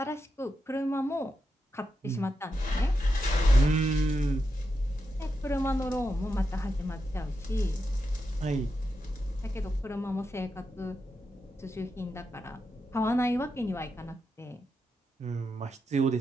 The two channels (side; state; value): both; normal; correlation 0.87